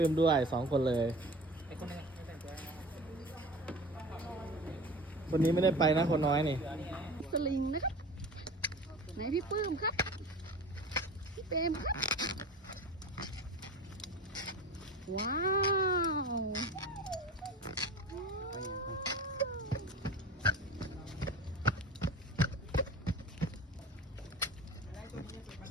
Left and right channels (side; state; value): both; normal; correlation 0.35